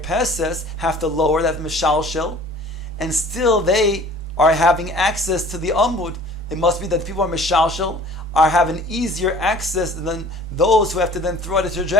have to lower that mishalshel, and still they are having access to the amud. It must be that the people are mishalshel, are having easier access than those who have to then throw out a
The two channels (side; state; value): both; normal; correlation 0.48